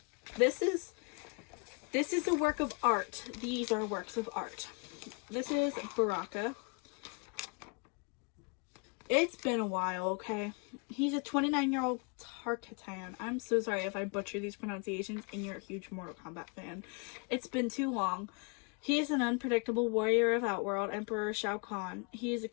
This is a work of art. These are works of art. This is Baraka. It's been a while, okay? He's a 29-year-old Tarkatan. I'm so sorry if I butcher these pronunciations and you're a huge Mortal Kombat fan. It's been too long. He is an unpredictable warrior of Outworld, Emperor Shao Kahn. He is a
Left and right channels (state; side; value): quieter; right; 34.3 dB